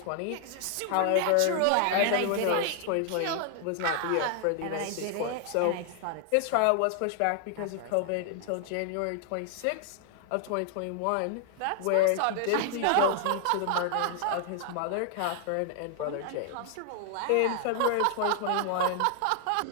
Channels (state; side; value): different; both; correlation 0.00